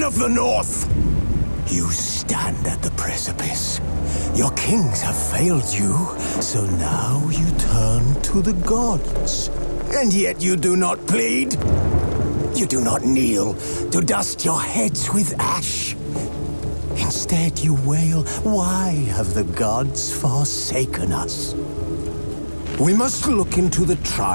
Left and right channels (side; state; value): both; inverted; correlation -1.00